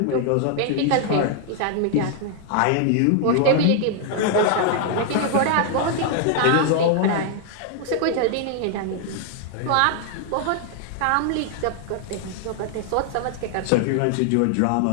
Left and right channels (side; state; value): both; different; correlation 0.00